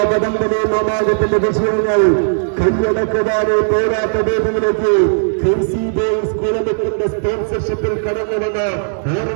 വടംവലി മാമാകത്തിന്റെ വിജയങ്ങൾ കൈയടക്കുവാനെ പോരാട്ട വേദിയിലേക്ക് ക്രേസി ബോയ്സ് കുളമുക്കിന്റെ സ്പോൺസർഷിപ്പിൽ കടന്നുവന്ന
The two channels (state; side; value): silent; left; digital silence